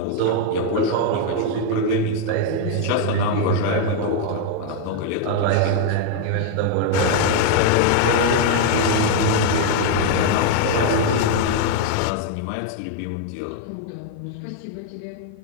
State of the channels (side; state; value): both; different; correlation 0.00